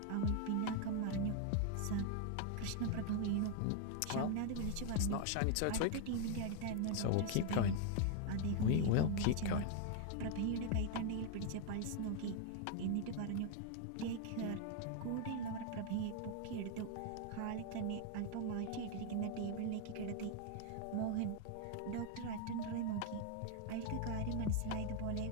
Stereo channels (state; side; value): different; both; correlation 0.00